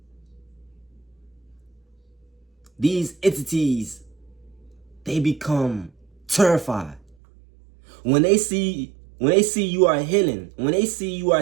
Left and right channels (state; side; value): drops out; left; at 7.2 s